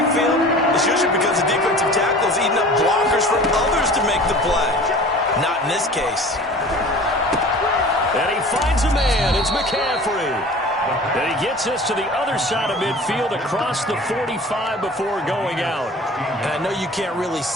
it's usually because the defensive tackle is eating up blockers for others to make the play. Not in this case. And he finds a man. It's McCaffrey. And he gets us to the other side of midfield across the 45 before going out. And I know you can't really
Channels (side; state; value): both; normal; correlation 0.42